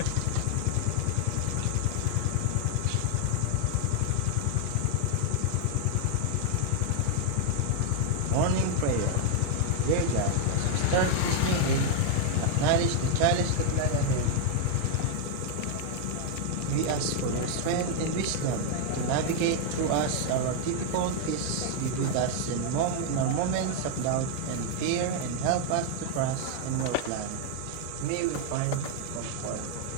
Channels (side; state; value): both; different; correlation 0.00